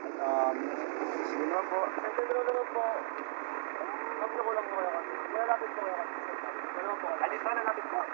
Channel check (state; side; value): silent; left; digital silence